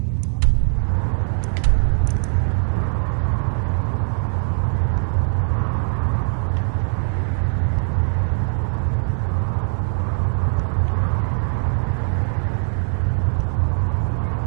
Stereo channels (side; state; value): left; silent; 65 dB below the other